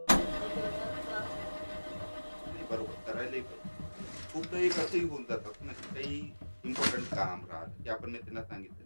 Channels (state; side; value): inverted; both; correlation -1.00